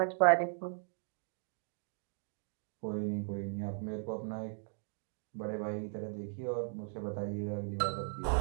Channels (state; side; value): silent; left; digital silence